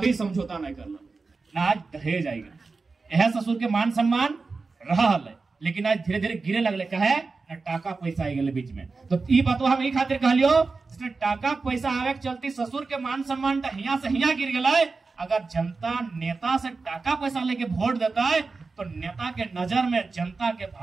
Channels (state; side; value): quieter; left; 4.1 dB